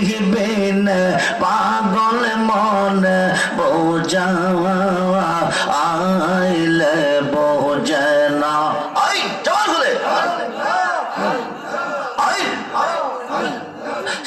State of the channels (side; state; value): both; identical; correlation 1.00